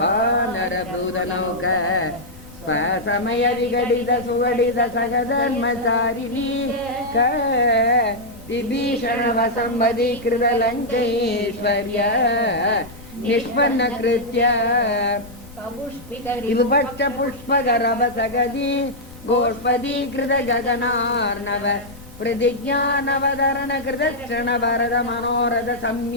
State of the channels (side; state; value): left; noise; rumble, 21 dB below the sound